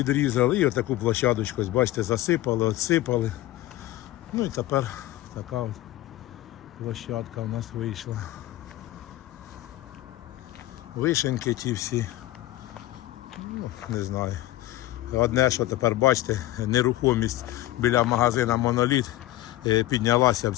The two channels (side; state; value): right; quieter; 15.8 dB